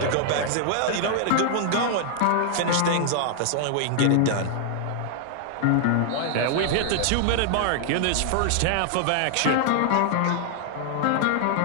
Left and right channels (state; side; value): different; both; correlation 0.00